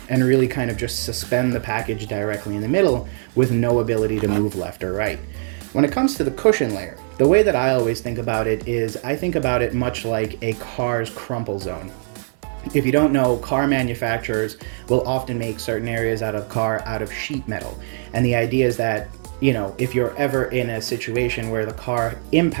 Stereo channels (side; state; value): left; silent; 56 dB below the other